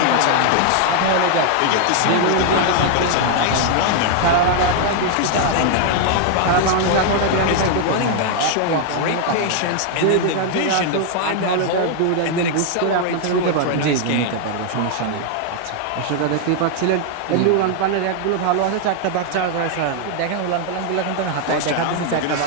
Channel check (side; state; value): both; different; correlation 0.00